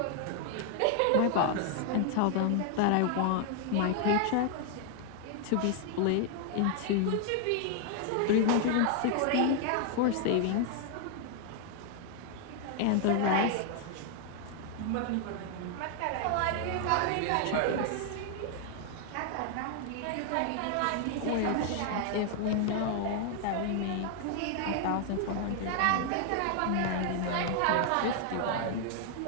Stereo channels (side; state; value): both; different; correlation 0.00